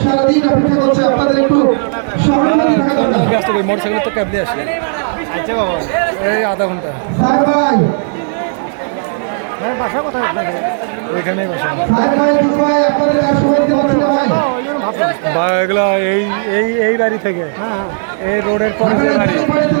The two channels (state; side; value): silent; left; digital silence